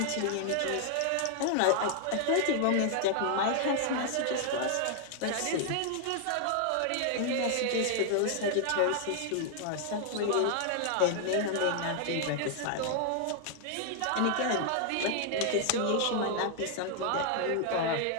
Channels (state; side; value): different; both; correlation 0.00